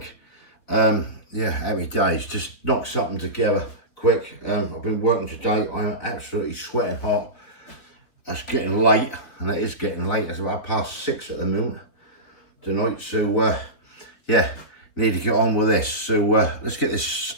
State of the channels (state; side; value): late; right; 3.8 ms